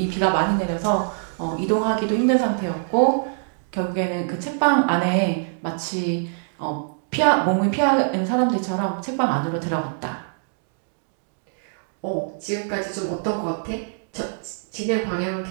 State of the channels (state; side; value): silent; left; digital silence